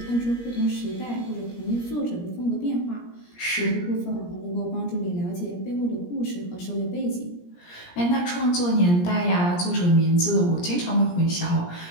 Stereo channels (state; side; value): late; right; 17 ms